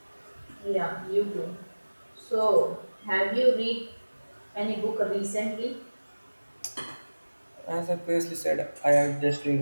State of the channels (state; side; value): inverted; both; correlation -1.00